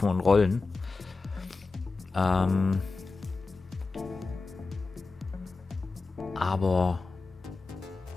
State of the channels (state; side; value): quieter; right; 3.8 dB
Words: und rollen. Aber